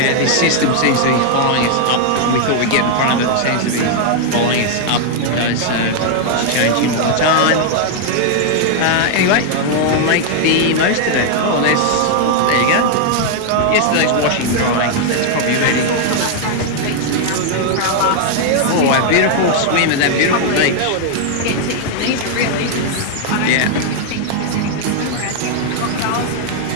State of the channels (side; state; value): both; different; correlation 0.00